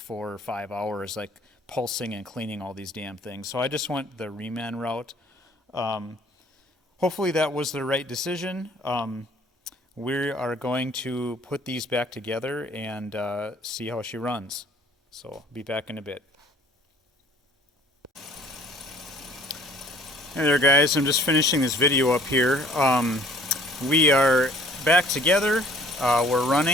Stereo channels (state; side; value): normal; both; correlation 0.55